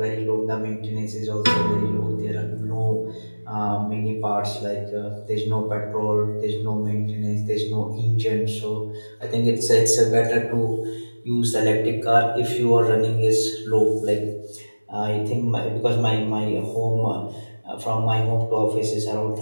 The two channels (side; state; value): both; inverted; correlation -1.00